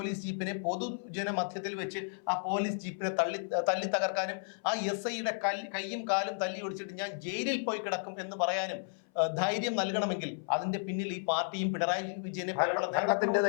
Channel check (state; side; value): silent; right; 56 dB below the other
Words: ജീപ്പിനെ പൊതുജന മധ്യത്തിൽ വെച്ച് ആ പോലീസ് ജീപ്പിനെ തല്ലി തകർക്കാനും ആ SIയുടെ കൈയും കാലും തല്ലി ഒടിച്ചിട്ട് ഞാൻ ജയിലിൽ പോയി കിടക്കും എന്ന് പറയാനും ധൈര്യം നൽകണമെങ്കിൽ അതിന്റെ പിന്നിൽ ഈ പാർട്ടിയും പിണറായി വിജയനെ പോലുള്ള ഭരണത്തിന്റെ